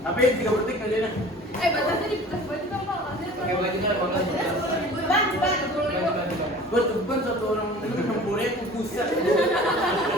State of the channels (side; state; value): both; normal; correlation 0.43